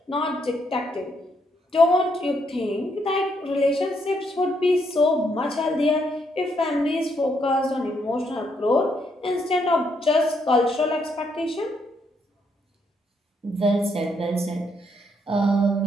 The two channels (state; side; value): normal; both; correlation 0.75